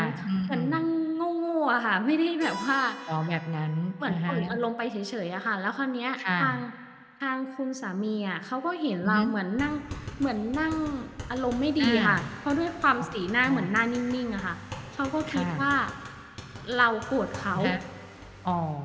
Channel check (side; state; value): both; identical; correlation 1.00